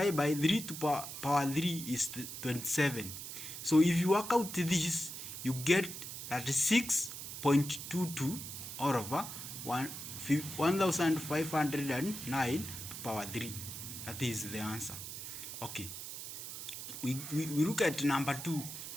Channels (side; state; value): right; noise; hiss, 8 dB below the sound